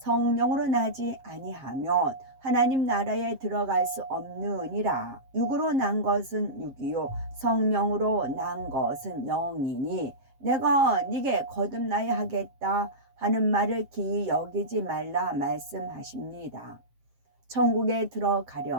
나지 아니하면 하나님 나라에 들어갈 수 없느니라. 육으로 난 것은 육이요 성령으로 난 것은 영이니 내가 네게 거듭나야 하겠다 하는 말을 기이 여기지 말라 말씀하십니다. 천국에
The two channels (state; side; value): late; left; 7.5 ms